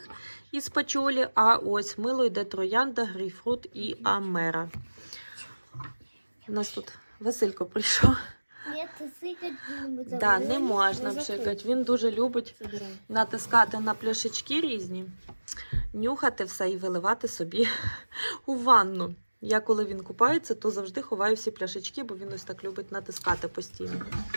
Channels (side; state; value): both; inverted; correlation -1.00